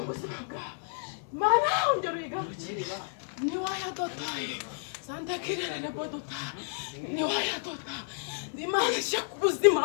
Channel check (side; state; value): right; silent; digital silence